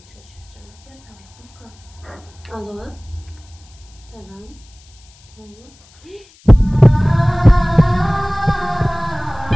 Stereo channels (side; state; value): left; noise; hiss, 27 dB below the sound